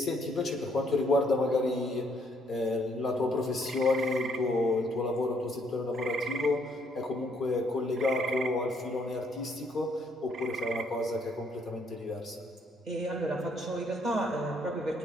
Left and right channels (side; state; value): both; normal; correlation 0.69